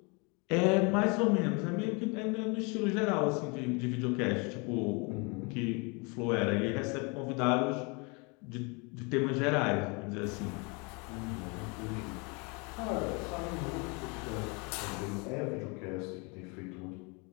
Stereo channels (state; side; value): quieter; right; 30.9 dB